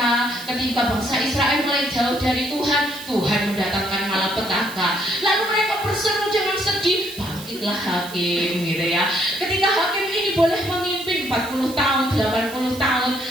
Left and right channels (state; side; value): noise; right; hiss, 15 dB below the sound